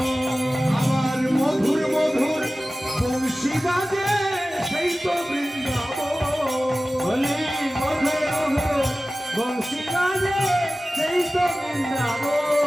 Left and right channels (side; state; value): both; normal; correlation 0.96